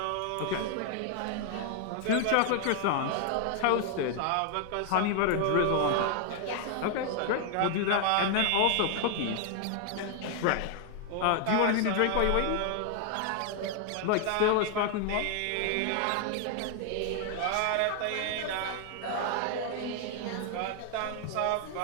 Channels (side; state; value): both; different; correlation 0.00